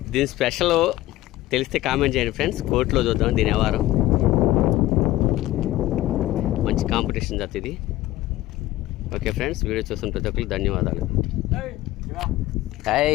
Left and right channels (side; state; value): right; quieter; 16.2 dB